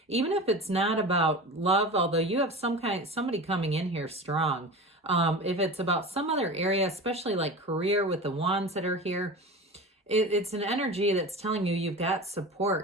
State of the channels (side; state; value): both; normal; correlation 0.31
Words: even if it's not about love, although you have somebody coming in here strong. If it's about some other area, especially like career with the wands that are here, it's an energy that's telling you you've got